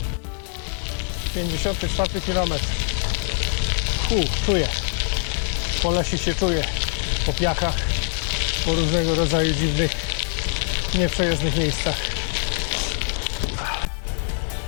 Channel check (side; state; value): right; silent; 61 dB below the other